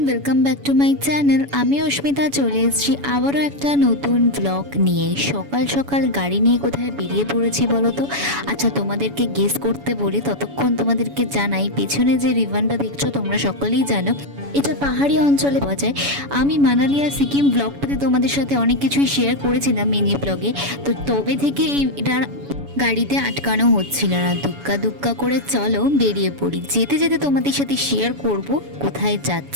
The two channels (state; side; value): late; left; 7.1 ms